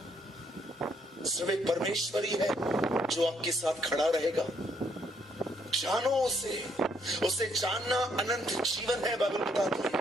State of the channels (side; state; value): both; normal; correlation 0.70